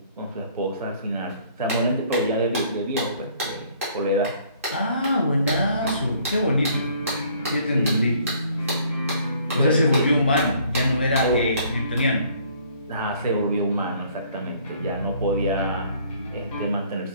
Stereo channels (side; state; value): both; inverted; correlation -0.60